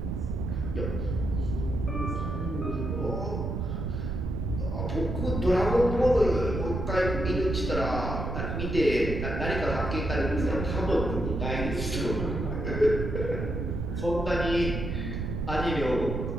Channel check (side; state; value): right; noise; rumble, 3 dB below the sound